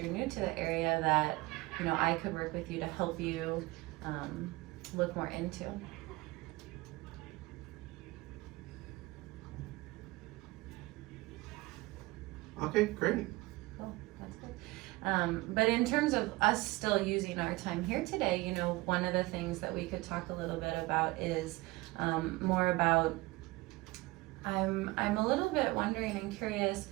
new to the area, that, you know, I could work with you to help you look more into. Okay, great. Cool, that's good. But in terms of us still using our time here today, you know, one of the things that we could talk a little bit about is more about, I'm a little bit wondering and curious,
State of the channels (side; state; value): left; quieter; 21.3 dB